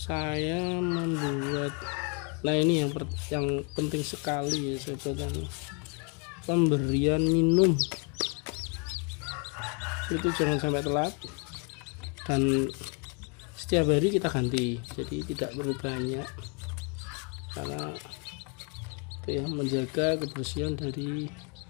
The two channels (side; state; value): right; quieter; 35.6 dB